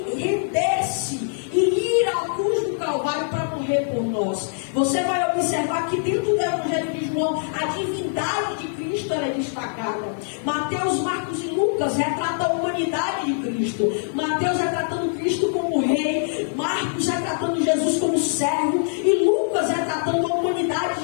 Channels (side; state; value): right; silent; 63 dB below the other